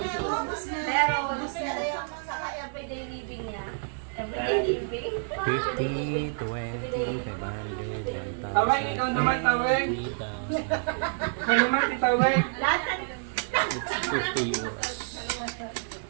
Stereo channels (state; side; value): silent; left; digital silence